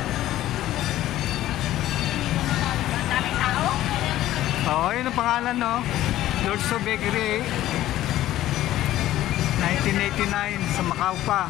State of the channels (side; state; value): right; quieter; 14.1 dB